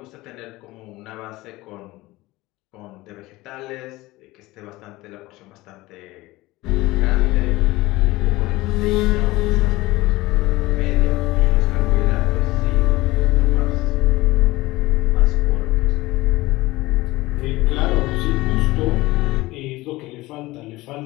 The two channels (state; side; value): quieter; right; 19.5 dB